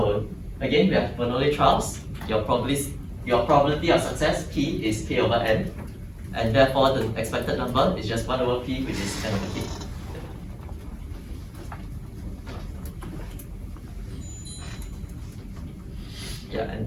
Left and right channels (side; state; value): both; identical; correlation 1.00